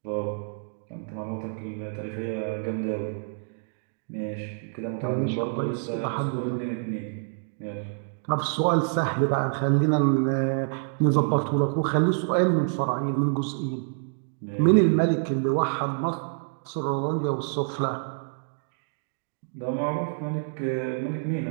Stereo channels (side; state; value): left; silent; digital silence